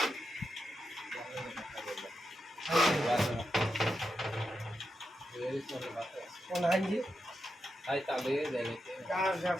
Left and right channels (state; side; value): normal; both; correlation 0.86